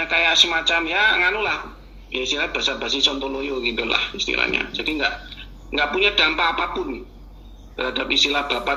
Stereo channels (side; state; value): both; identical; correlation 1.00